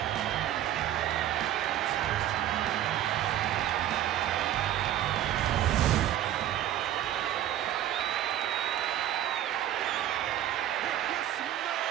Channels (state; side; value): quieter; left; 11.9 dB